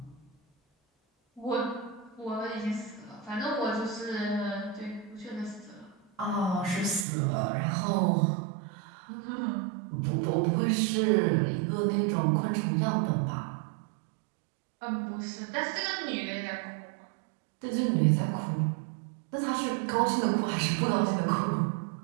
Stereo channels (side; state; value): left; drops out; at 7.1 s